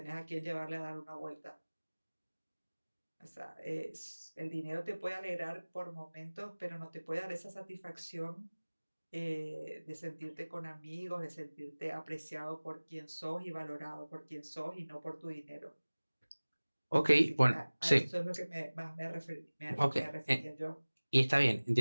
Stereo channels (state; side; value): inverted; both; correlation -1.00